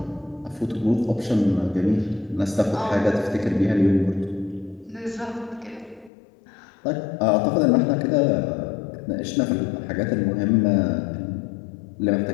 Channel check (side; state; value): right; drops out; at 6.1 s